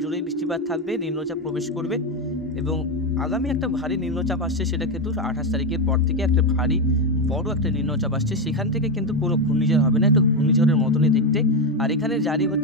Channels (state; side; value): normal; both; correlation 0.09